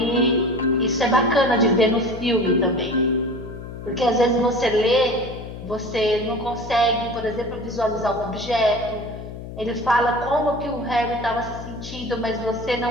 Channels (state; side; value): noise; left; hum, 11 dB below the sound